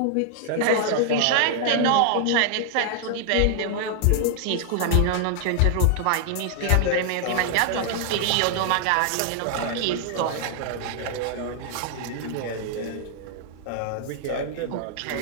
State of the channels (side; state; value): both; different; correlation 0.00